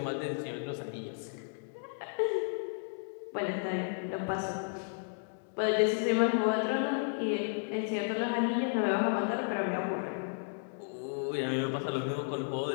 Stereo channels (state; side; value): silent; right; digital silence